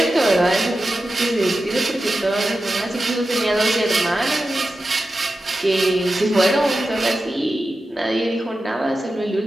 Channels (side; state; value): both; normal; correlation 0.92